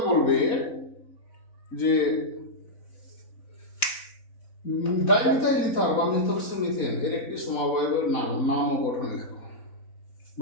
বলবে যে ডাইমিথাইল ইথার বা মিথক্সিমিথেন এর একটি সমবায়বের নাম ও গঠন লেখো,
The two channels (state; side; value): late; right; 4.0 ms